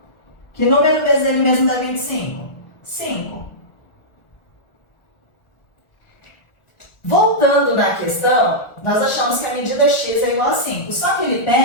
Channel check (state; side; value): late; right; 1.4 ms